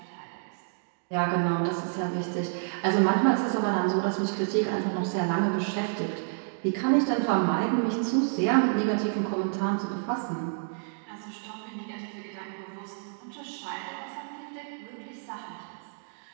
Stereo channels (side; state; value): left; silent; digital silence